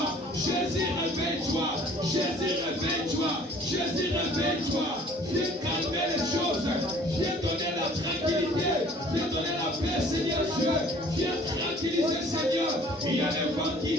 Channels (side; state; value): both; normal; correlation 0.53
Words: Jésus, réveille-toi. Jésus, réveille-toi. Jésus, réveille-toi. Viens calmer les choses. Viens donner la tranquillité. Viens donner la paix, Seigneur Dieu. Viens tranquilliser, Seigneur. Il y a des vents qui